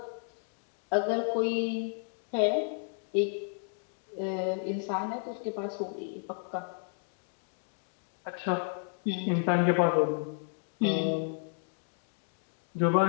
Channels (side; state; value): right; silent; 56 dB below the other